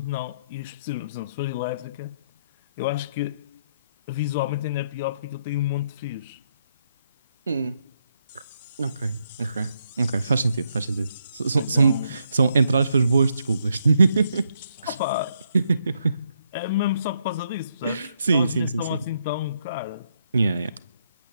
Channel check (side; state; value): both; inverted; correlation -0.76